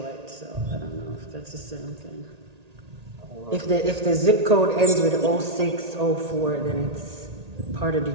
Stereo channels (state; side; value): late; left; 1.8 ms